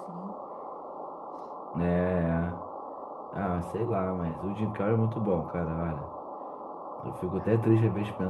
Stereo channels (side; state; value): both; identical; correlation 1.00